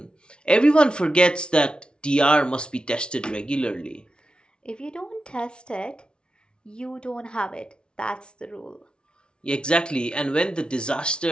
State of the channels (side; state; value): right; late; 0.056 ms